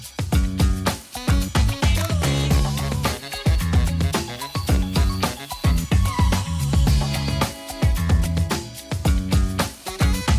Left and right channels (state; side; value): identical; both; correlation 1.00